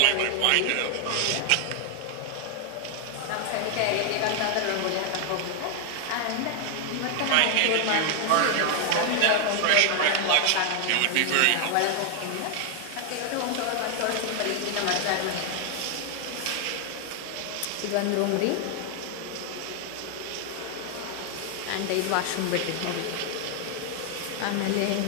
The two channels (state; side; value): different; both; correlation 0.00